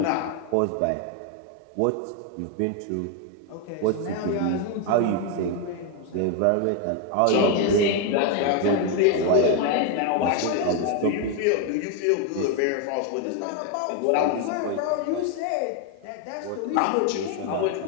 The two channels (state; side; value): different; both; correlation 0.01